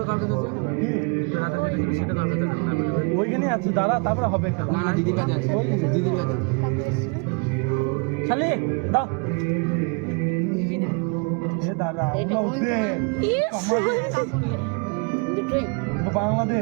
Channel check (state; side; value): quieter; left; 33.7 dB